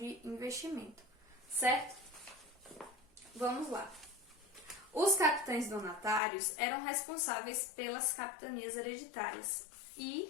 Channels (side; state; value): right; drops out; at 6.2 s